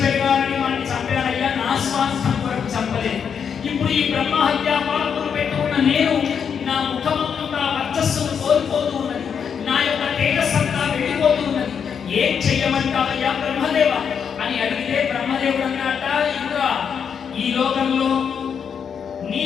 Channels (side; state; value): right; quieter; 7.2 dB